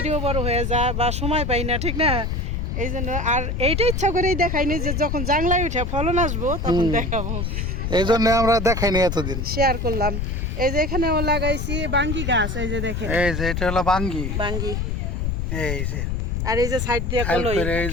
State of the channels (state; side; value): noise; left; rumble, 1 dB below the sound